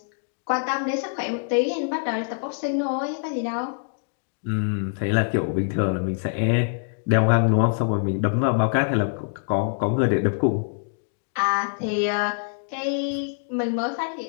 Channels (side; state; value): right; silent; digital silence